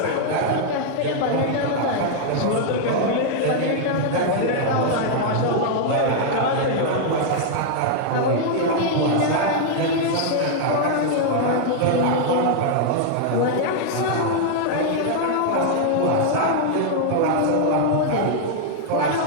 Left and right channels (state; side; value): different; both; correlation 0.00